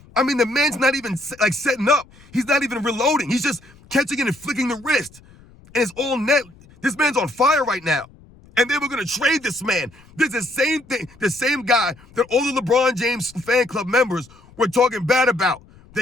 I mean, the man's not even like setting up. He's not even reloading. He's just catching it and flicking the wrist. And it's all net. This man's on fire right now. And they were going to trade this man. This is the same thing, the same guy that all the LeBron James fan club members were talking bad about.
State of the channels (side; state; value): left; noise; rumble, 25 dB below the sound